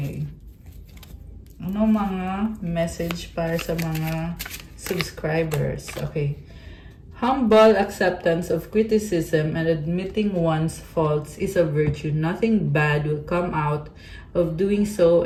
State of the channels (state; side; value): identical; both; correlation 1.00